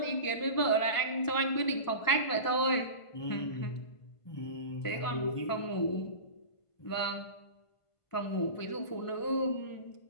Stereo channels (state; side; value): late; right; 1.5 ms